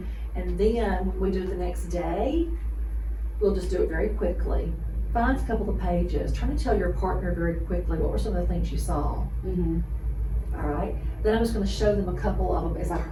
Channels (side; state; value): both; identical; correlation 1.00